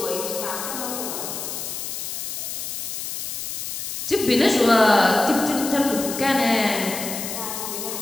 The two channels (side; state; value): left; noise; hiss, 5 dB below the sound